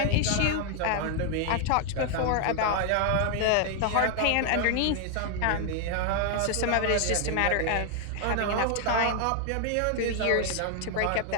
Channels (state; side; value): different; both; correlation 0.00